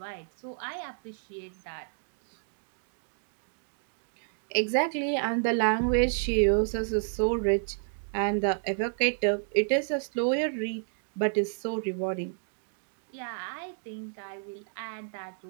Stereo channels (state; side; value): silent; left; digital silence